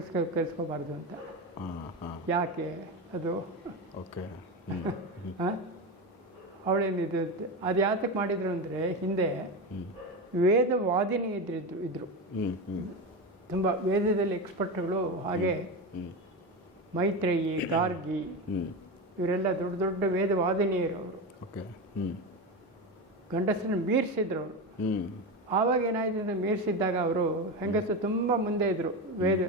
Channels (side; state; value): both; normal; correlation 0.19